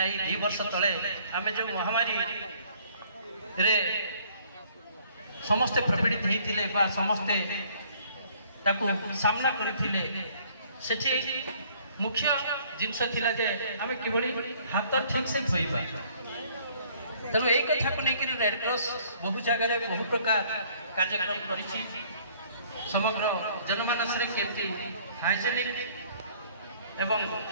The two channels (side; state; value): both; inverted; correlation -0.59